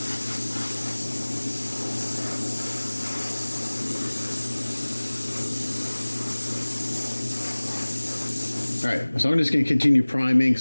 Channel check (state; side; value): inverted; both; correlation -1.00